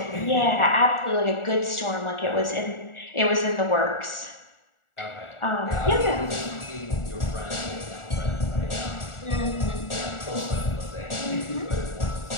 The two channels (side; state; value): right; late; 1.4 ms